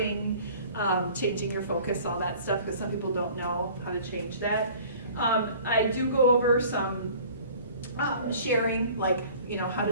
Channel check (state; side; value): inverted; both; correlation -0.48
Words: changing your focus, all that stuff, because some people don't know how to change that. I do go over some sharing, like, how